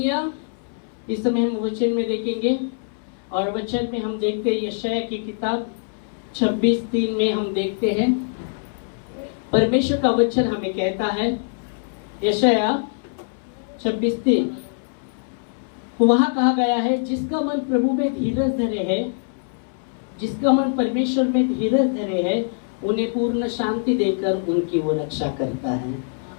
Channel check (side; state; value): right; silent; 63 dB below the other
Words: इस समय हम वचन में देखेंगे और वचन में हम देखते हैं यशाया की किताब 26:3 में हम देखते हैं परमेश्वर का वचन हमें कहता है, यशाया 26:3 वहां कहा गया है, जिसका मन प्रभु में धीरज धरे है, जिसका मन परमेश्वर में धीरज धरे है, उन्हें पूर्ण शांति देकर उनकी वो रक्षा करता है,